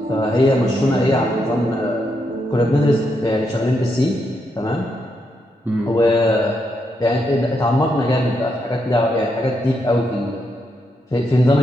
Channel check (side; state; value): both; normal; correlation 0.80